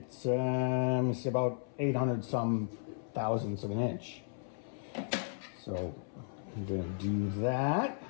about 800 some thousandths of an inch. So I'm gonna do that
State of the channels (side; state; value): right; silent; 55 dB below the other